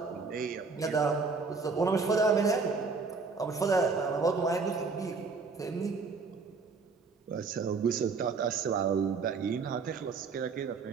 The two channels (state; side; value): quieter; left; 4.7 dB